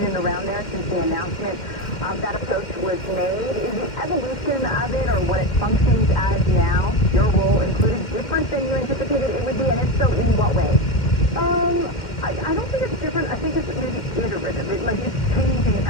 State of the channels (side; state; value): right; late; 2.1 ms